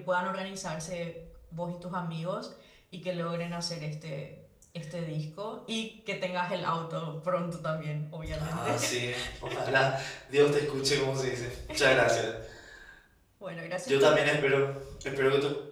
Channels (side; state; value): both; identical; correlation 1.00